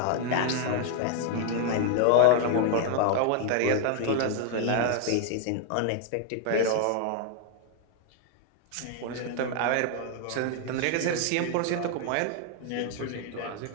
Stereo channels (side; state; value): both; different; correlation 0.00